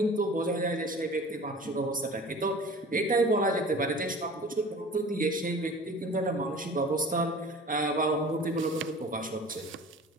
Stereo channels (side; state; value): both; normal; correlation 0.42